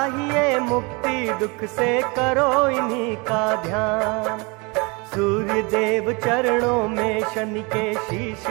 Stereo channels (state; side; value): quieter; left; 28.7 dB